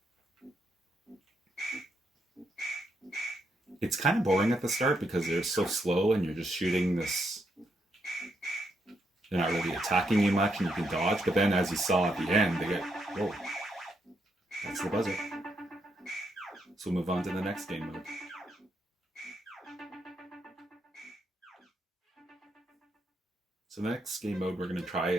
It's kind of boring at the start because they're so slow and you're just shooting this. They're not really attacking you much and you can dodge, but then as you saw at the end, they get, whoa, that's the buzzer. So we'll move on to the next game mode. So the next game mode we're going to try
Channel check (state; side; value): normal; both; correlation 0.79